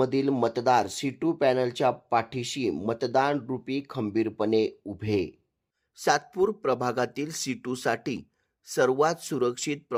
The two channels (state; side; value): identical; both; correlation 1.00